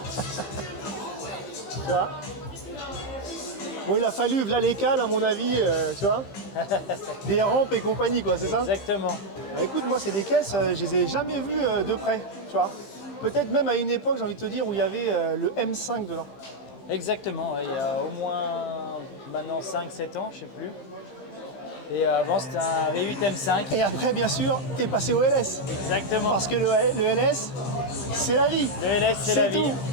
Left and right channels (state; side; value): late; right; 15 ms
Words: Tu vois. Bon, il a fallu, là les cales à mon avis, tu vois, des rampes et compagnie quoi, c'est ça? Exactement. Bah, écoute, moi c'est des caisses, je les ai jamais vues de près, tu vois. Peut-être même à une époque, j'ai envie de te dire, où il y avait le M5 dedans. Exactement, ouais, il y a au moins maintenant 5-7 ans, je sais plus. Et avant c'était un V8 M5. Et après, bien sûr, t'es passé au LS. Exactement. Parce que le LS, c'est la vie. Le LS c'est la vie. tout,